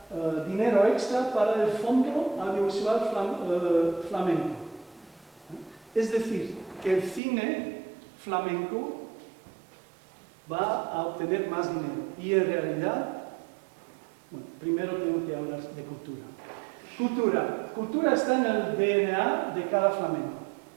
dinero extra para el Fondo Audiovisual Flamenco. Es decir, que el cine flamenco va a obtener más dinero. Y en realidad, bueno, primero tengo que hablar de cultura. Cultura está en el DNA de cada flamenco.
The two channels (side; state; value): left; drops out; at 7.2 s